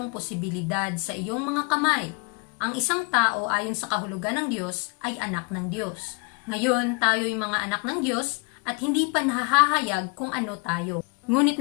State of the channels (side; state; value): right; quieter; 30.8 dB